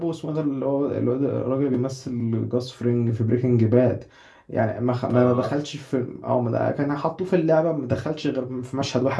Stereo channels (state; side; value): identical; both; correlation 1.00